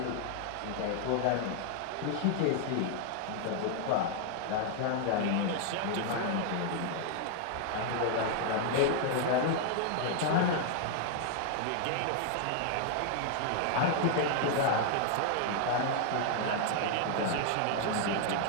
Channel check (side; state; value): both; different; correlation 0.00